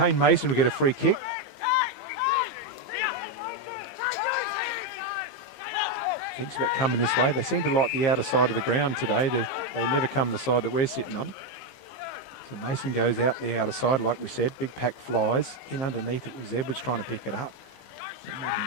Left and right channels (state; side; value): late; right; 15 ms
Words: Mason will get a free kick. Thinks about coming this way. They seem to like the outer side of the ground today. They never come the side that we're sitting on. So Mason goes out the outer side, like we said. Big pack flies. In underneath it was Edwards trying to pick it up. It might